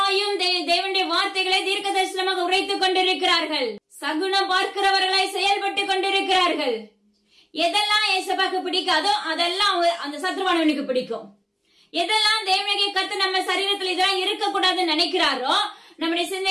தேவனுடைய வார்த்தைகளை தீர்க்க தரிசனமாக உரைத்துக் கொண்டிருக்கிறார்கள். சகுனம் பார்க்கிறவர்களாய் செயல்பட்டு கொண்டிருக்கிறார்கள். எதெல்லாம் ஏசப்பாக்கு பிடிக்காதோ அதெல்லாம் அந்த சத்ருவானவனுக்கு பிடிக்கும். எதெல்லாம் தேவனாகிய கர்த்தர் நம்ம சரீரத்துல இதெல்லாம் இருக்கக்கூடாதுன்னு நினைக்கிறாரோ, நம்முடைய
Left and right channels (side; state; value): both; identical; correlation 1.00